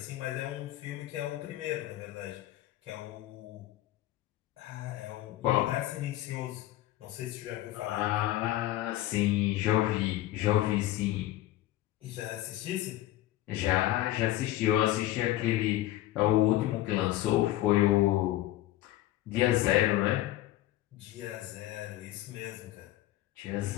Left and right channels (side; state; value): right; quieter; 15.1 dB